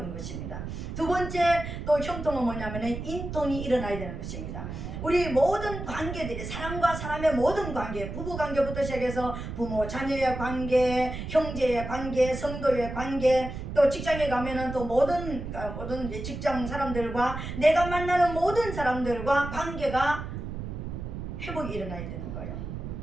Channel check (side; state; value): right; noise; rumble, 7 dB below the sound